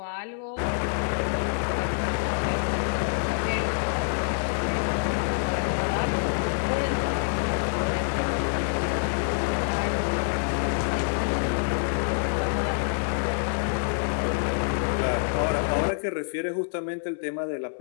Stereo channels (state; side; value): silent; right; 61 dB below the other